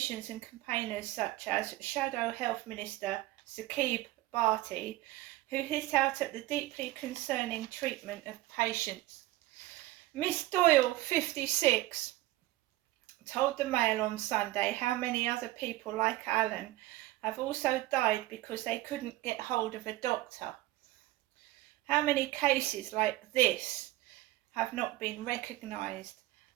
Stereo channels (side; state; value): left; quieter; 17.5 dB